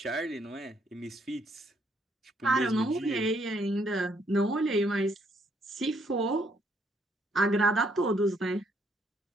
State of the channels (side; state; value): both; normal; correlation 0.70